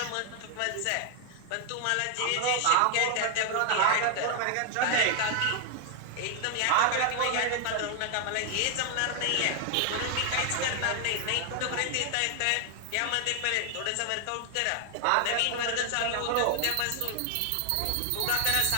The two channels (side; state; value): both; different; correlation 0.00